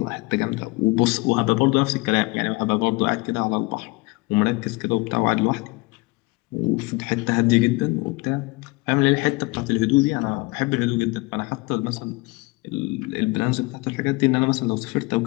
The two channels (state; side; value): quieter; right; 24.7 dB